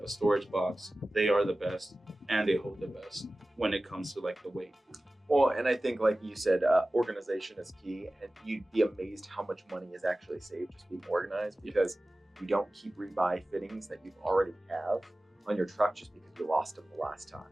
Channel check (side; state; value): both; normal; correlation 0.97